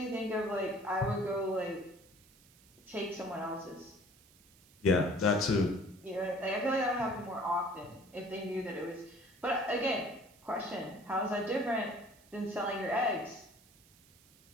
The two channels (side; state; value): right; noise; hiss, 27 dB below the sound